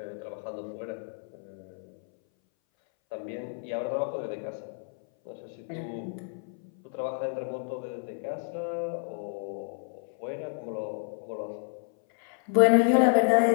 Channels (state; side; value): silent; right; 58 dB below the other